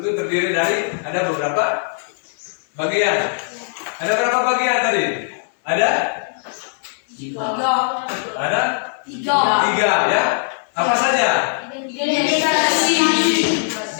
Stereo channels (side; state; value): right; silent; digital silence